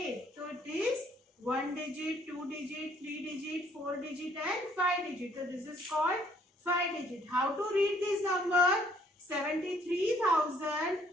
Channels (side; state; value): both; normal; correlation 0.63